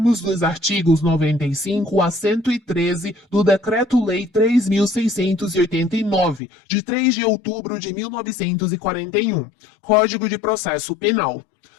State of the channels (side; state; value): right; drops out; at 6.4 s